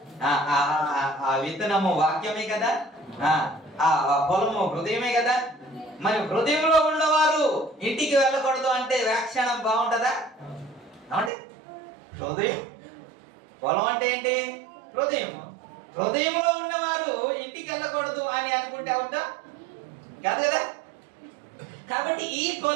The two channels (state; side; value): drops out; left; at 11.3 s